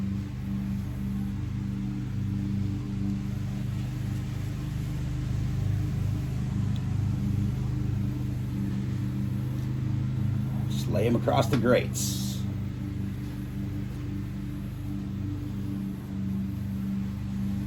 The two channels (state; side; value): identical; both; correlation 1.00